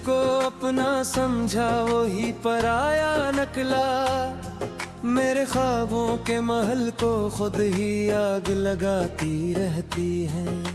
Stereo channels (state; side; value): identical; both; correlation 1.00